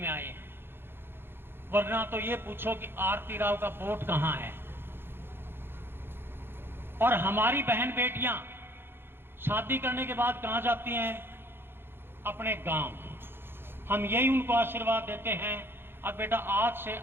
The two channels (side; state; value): left; late; 0.11 ms